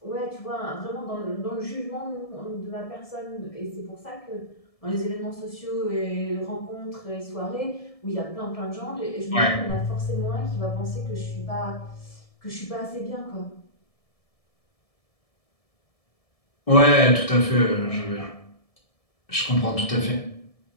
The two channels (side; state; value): right; late; 1.7 ms